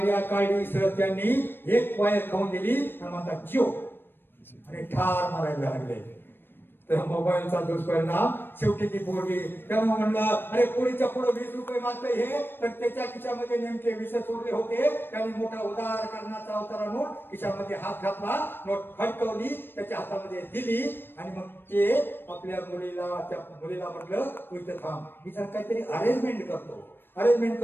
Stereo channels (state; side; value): late; right; 0.10 ms